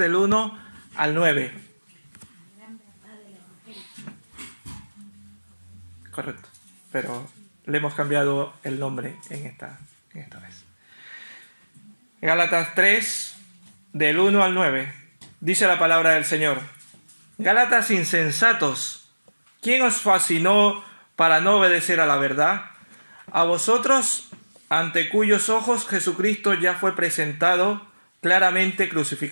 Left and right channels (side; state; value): both; inverted; correlation -1.00